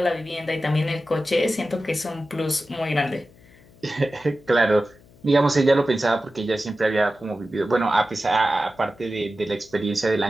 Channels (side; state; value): left; noise; hum, 26 dB below the sound